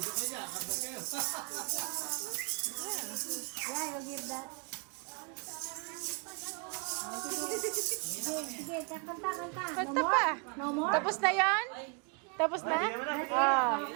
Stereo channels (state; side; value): quieter; left; 35.3 dB